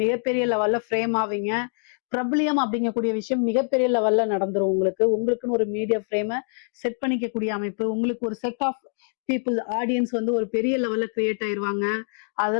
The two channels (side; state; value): right; silent; digital silence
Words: மிகப்பெரிய லெவல்ல ஃப்ரேம் ஆவீங்க. பிரபலியம் அப்படிங்கக்கூடிய விஷயம் மிகப்பெரிய லெவல்ல நடந்துரும் உங்களுக்கு. உங்களுக்குன்னு ஒரு மீடியா ஃப்ரேமை செட் பண்ணிக்கக்கூடிய அமைப்பு, உங்களுக்கு ஒரு செட் ஆஃப் பீப்புள் ஆடியன்ஸ் வந்து ஒரு பெரிய லெவல்ல கிரியேட் ஆயிருவாங்க.